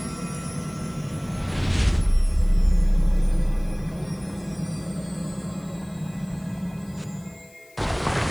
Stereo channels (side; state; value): left; noise; hiss, 28 dB below the sound